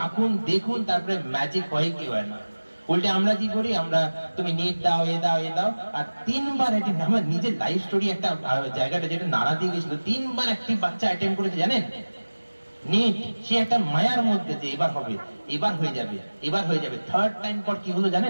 দেখুন, তারপরে ম্যাজিক হয় কি হয় না। উল্টে আমরা কি করি, আমরা তুমি নিট দাও, এ দাও, এ দাও, আর 3 বার অ্যাটেম্প। আমার নিজের লাইফ স্টোরি একটা জায়গাটা যেটা নাড়া দিয়ে গেছিল, 3 বার একটি বাচ্চা অ্যাটেম্প করেছে জানেন নিট। সে একটা মায়ার মধ্যে যে এবার হবে, এবার হয়ে যাবে, এবার হয়ে যাবে। 3rd টাইম পর কি হলো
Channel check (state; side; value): inverted; both; correlation -1.00